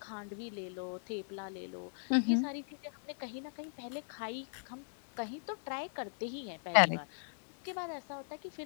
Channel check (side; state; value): right; silent; digital silence